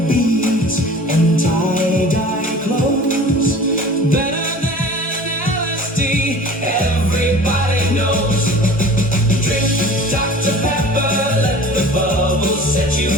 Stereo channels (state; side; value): normal; both; correlation 0.42